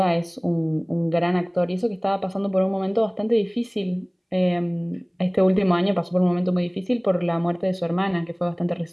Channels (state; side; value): identical; both; correlation 1.00